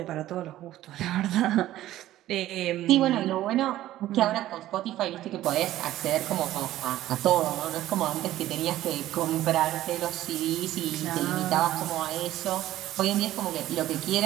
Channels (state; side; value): quieter; left; 14.2 dB